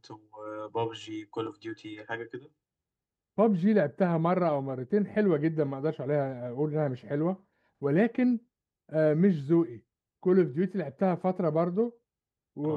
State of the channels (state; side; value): identical; both; correlation 1.00